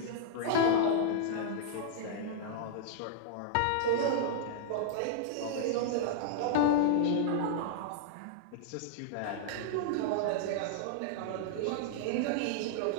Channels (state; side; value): different; both; correlation -0.01